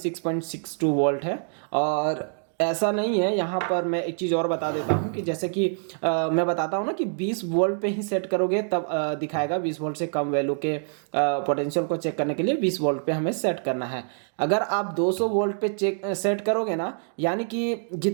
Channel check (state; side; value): silent; left; 61 dB below the other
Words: वोल्ट है। और ऐसा नहीं है, यहाँ पर मैं एक चीज़ और बता देता हूँ कि जैसे कि मैं बताता हूँ ना कि 20 वोल्ट पे ही सेट करोगे तब दिखाएगा। 20 वोल्ट से कम वैल्यू के पोटेंशियल को चेक करने के लिए 20 वोल्ट पे हमें सेट करना है। अगर आप 200 वोल्ट पे सेट करोगे ना, यानी कि